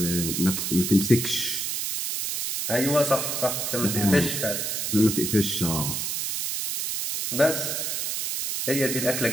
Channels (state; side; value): noise; right; hiss, 2 dB below the sound